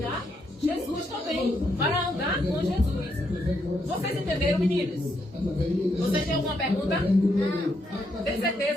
Jesus também. Para andar com Jesus. Vocês entenderam, meninos? Vocês têm alguma pergunta? Não. Tem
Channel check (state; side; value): normal; both; correlation 0.77